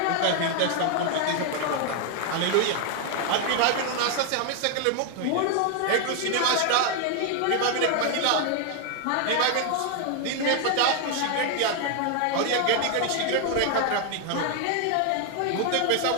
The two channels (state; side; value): different; both; correlation 0.01